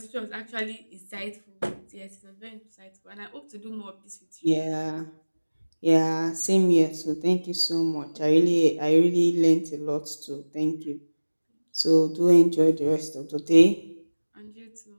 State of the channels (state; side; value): inverted; both; correlation -1.00